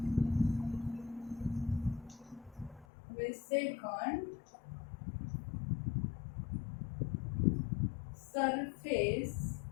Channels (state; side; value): drops out; right; at 2.9 s